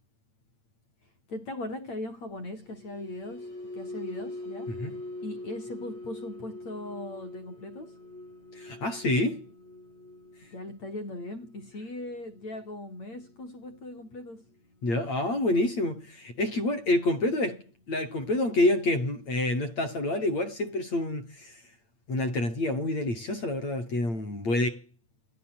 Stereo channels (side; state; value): right; late; 8.8 ms